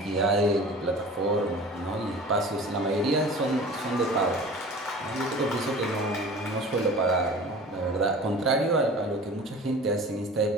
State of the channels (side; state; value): both; normal; correlation 0.41